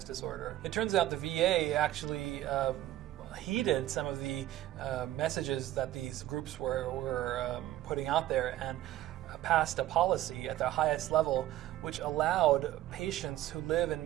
disorder. It turns out the VA actually heeded some of the messages that these groups were putting out there and passed a policy at the highest level which allowed patients who live in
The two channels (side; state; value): left; quieter; 14.3 dB